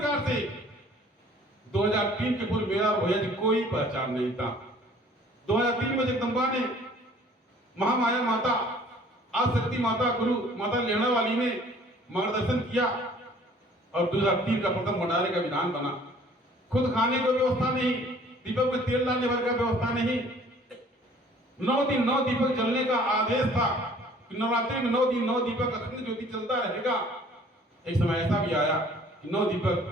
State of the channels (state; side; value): normal; both; correlation 0.54